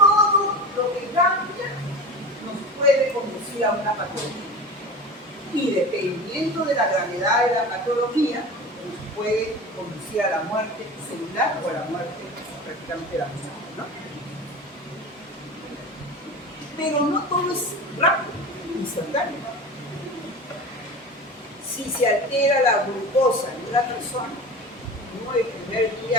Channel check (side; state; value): both; normal; correlation 0.32